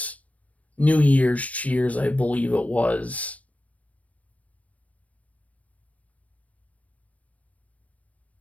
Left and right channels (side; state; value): right; late; 0.067 ms